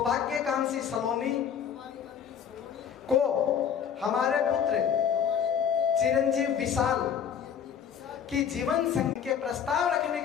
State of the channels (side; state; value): right; quieter; 8.1 dB